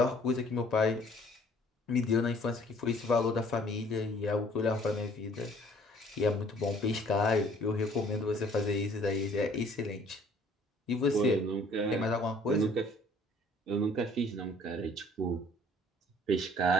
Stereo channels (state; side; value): normal; both; correlation 0.56